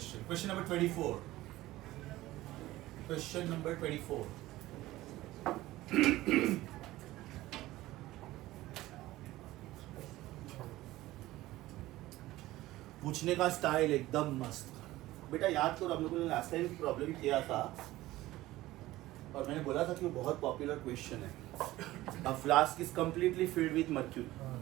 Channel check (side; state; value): left; quieter; 16.9 dB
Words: Question number 24. Question number 24. पूछने का स्टाइल एकदम मस्त. बेटा याद करो हम लोगों ने लास्ट टाइम प्रॉब्लम किया था और मैंने बोला था कि वो बहुत पॉपुलर क्वेश्चन है. A flask is completely filled with mercury.